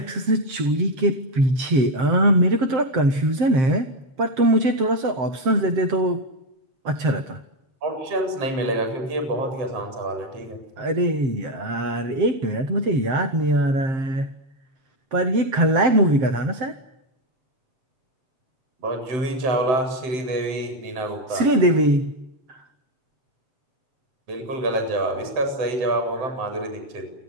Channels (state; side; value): late; left; 7.6 ms